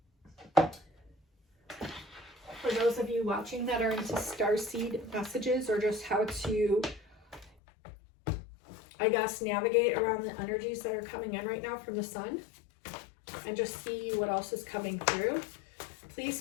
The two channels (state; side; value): drops out; right; at 7.5 s